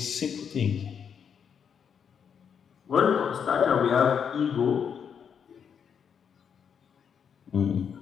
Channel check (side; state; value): right; quieter; 7.4 dB